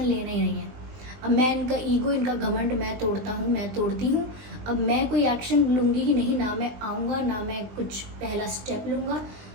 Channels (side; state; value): left; late; 20 ms